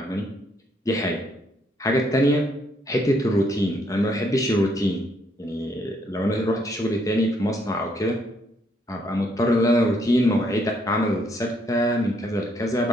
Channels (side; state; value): both; normal; correlation 0.71